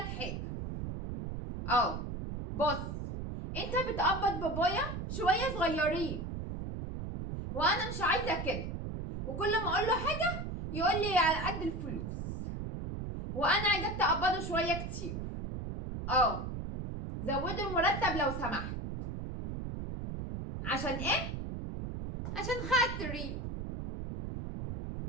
حاجه. بص، انت بتقبض بابايا شويه صغيرين وانا مش عايزه كده، وكل ما اقول له حاجه يقول لي على قد الفلوس، وانا عايزاك تقبضه شويه كتير. زودوا المرتب لو سمحت. عشان ايه؟ عشان خاطري.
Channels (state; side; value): noise; right; rumble, 5 dB below the sound